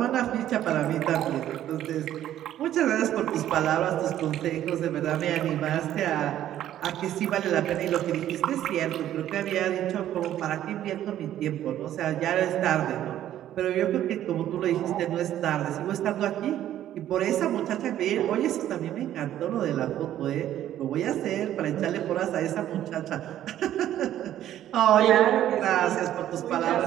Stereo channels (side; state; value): left; quieter; 12.0 dB